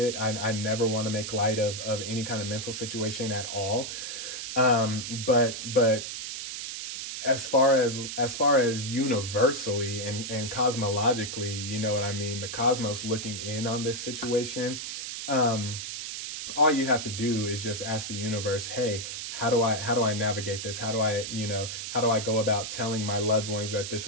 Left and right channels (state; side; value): noise; right; hiss, 6 dB below the sound